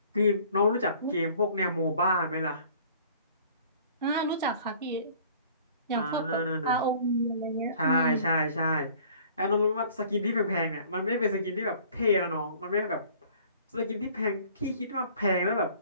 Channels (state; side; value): inverted; both; correlation -0.53